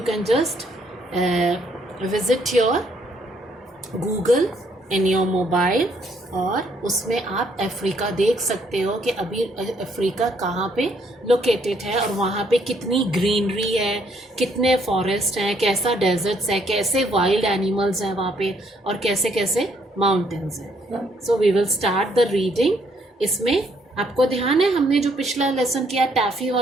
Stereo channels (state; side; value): normal; both; correlation 0.69